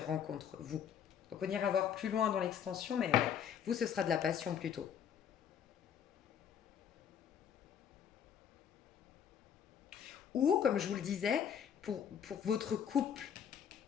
rencontres, vous. Donc on ira voir plus loin dans l'extension, mais ouais, vous, ce sera de la passion plutôt. Ou, comme je vous le disais, pour votre couple,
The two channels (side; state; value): right; quieter; 8.5 dB